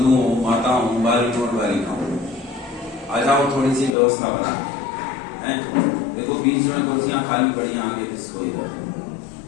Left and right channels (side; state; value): right; drops out; at 4.0 s